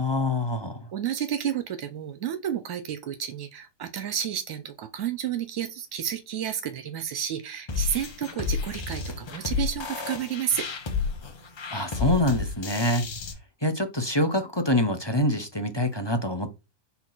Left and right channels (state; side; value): late; right; 1.1 ms